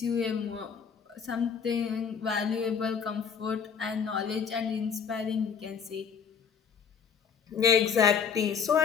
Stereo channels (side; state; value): right; quieter; 6.9 dB